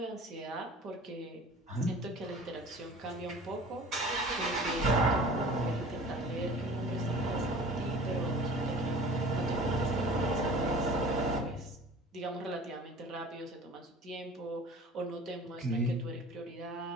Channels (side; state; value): both; normal; correlation 0.43